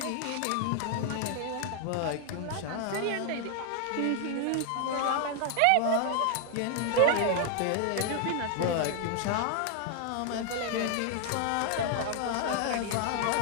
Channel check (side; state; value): both; different; correlation 0.00